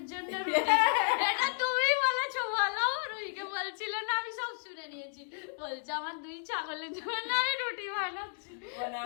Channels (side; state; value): right; silent; digital silence